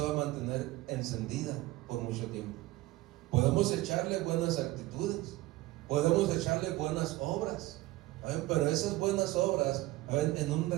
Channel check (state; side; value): quieter; left; 18.2 dB